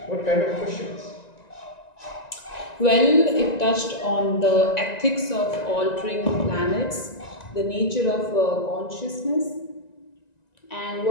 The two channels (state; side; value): late; right; 1.9 ms